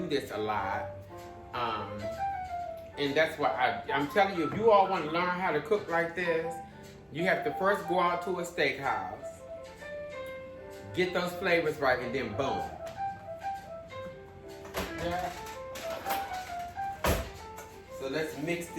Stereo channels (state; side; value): identical; both; correlation 1.00